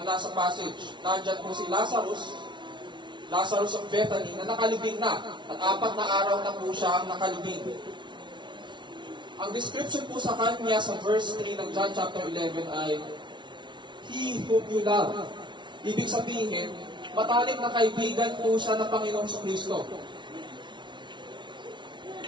nasa passage. Nandyan po si Lazarus of Bethany na nakalibing na. At 4 na araw na po siya ang nakalibing. Ang description po sa kanya sa verse 3 ng John chapter 11 ay, He whom you love. Ibig sabihin, matalik na kaibigan po siya ng Panginoong Kristo.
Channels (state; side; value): late; left; 0.23 ms